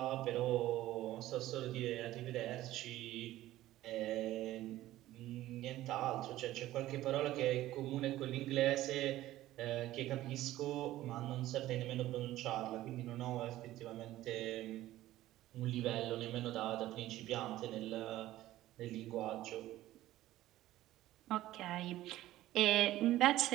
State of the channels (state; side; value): quieter; left; 15.1 dB